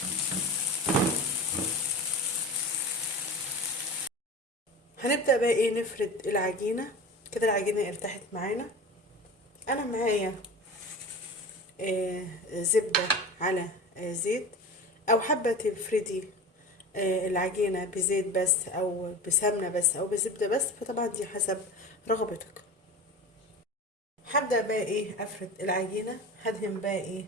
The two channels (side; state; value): both; normal; correlation 0.31